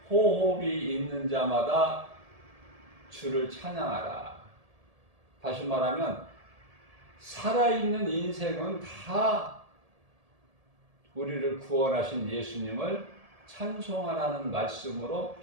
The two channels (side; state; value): left; late; 1.7 ms